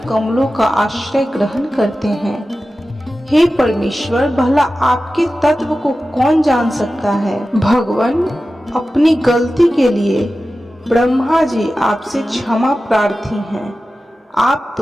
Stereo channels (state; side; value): normal; both; correlation 0.94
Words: का आश्रय ग्रहण करते हैं। हे परमेश्वर, भला आपके तत्व को कौन जान सकता है। भगवान, अपनी गलती के लिए ब्रह्मा जी आपसे क्षमा प्रार्थी हैं। आप तो